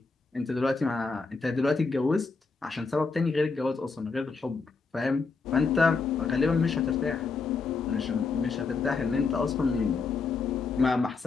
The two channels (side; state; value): right; quieter; 4.5 dB